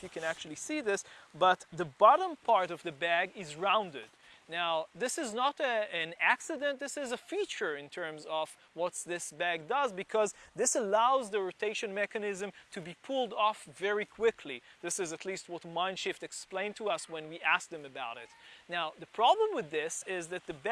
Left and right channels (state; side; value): identical; both; correlation 1.00